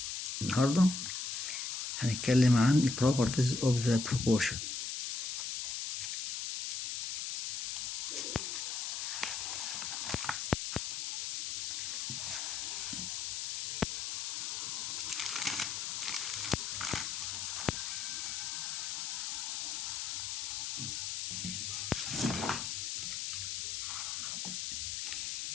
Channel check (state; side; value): noise; left; hiss, 2 dB below the sound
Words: النهاردة هنتكلم عن properties of the proportion.